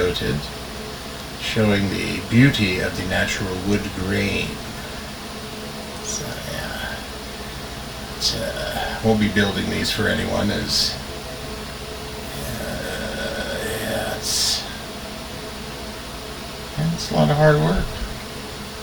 showing the beauty of the natural wood grain. So yeah, won't be building these for anyone, as it's a lot of hard work.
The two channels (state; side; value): identical; both; correlation 1.00